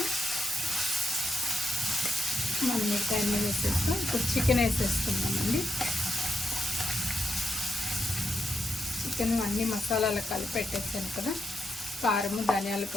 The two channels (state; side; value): normal; both; correlation 0.84